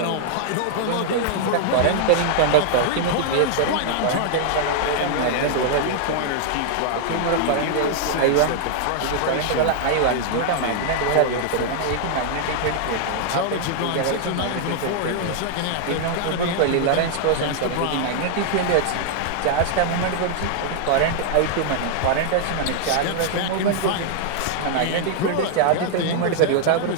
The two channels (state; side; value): different; both; correlation -0.01